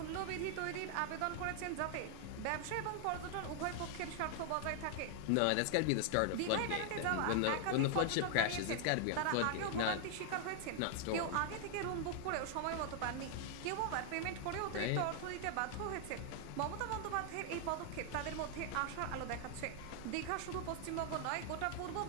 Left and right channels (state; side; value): different; both; correlation 0.00